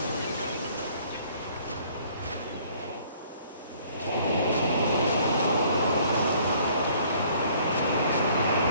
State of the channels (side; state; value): both; inverted; correlation -0.58